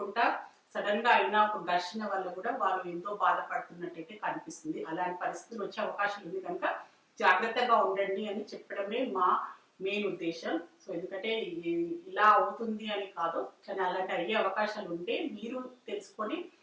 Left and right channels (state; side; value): identical; both; correlation 1.00